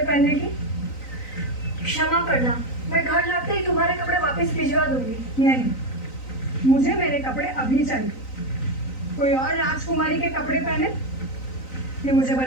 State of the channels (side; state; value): right; late; 3.9 ms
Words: पहनने की? क्षमा करना, मैं घर लौटते ही तुम्हारे कपड़े वापस भिजवा दूंगी। नहीं, मुझे मेरे कपड़े अभी चाहिए। कोई और राजकुमारी के कपड़े पहने ये मुझे